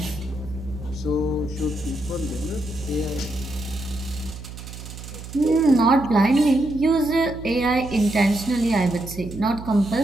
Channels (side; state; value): right; noise; hum, 12 dB below the sound